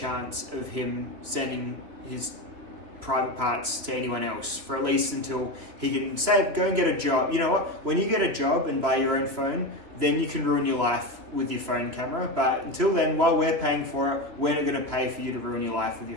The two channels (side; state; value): left; late; 3.0 ms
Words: of him sending his private parts to anyone else for at least until he can go and get a job. You know what? When you get a job and buy your own phone, then you can ruin your life with your phone camera. But until then, while we're paying for it, we're not going to pay for you to ruin your life with